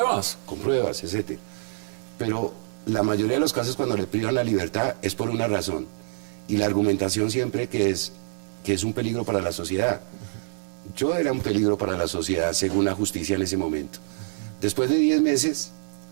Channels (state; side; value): silent; left; digital silence